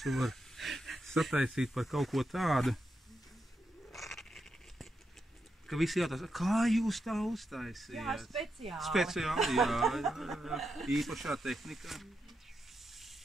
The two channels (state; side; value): normal; both; correlation 0.84